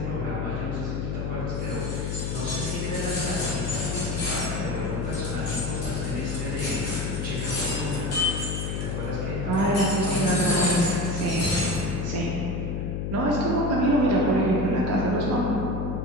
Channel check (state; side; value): noise; left; hum, 2 dB below the sound